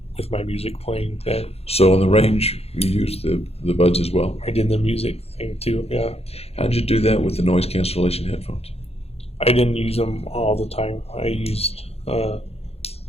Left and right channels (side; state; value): right; late; 0.29 ms